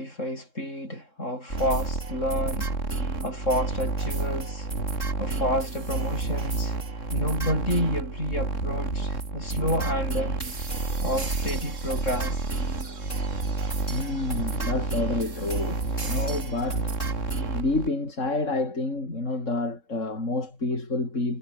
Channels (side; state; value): right; late; 3.7 ms